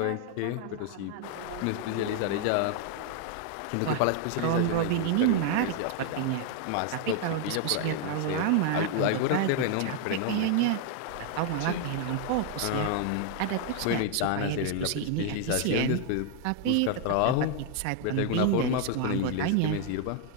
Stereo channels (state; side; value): different; both; correlation 0.00